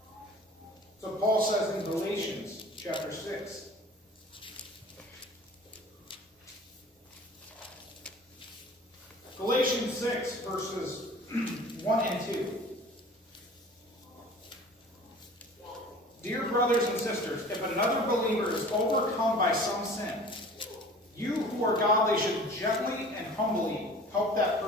So Paul says in Galatians chapter 6. Galatians 6, verses 1 and 2. Dear brothers and sisters, if another believer is overcome by some sin, you who are godly should gently and humbly help that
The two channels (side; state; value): both; normal; correlation 0.44